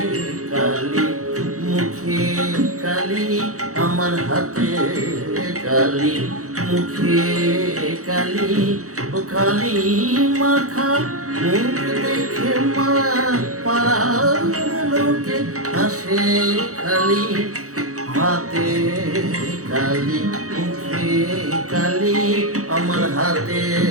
কালি মুখে কালি, আমার হাতে কালি মুখে কালি। ও কালি মাখা মুখ দেখে মা পাড়ার লোকে হাসে খালি। হাতে কালি মুখে কালি, আমার হাতে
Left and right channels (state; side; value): late; left; 0.65 ms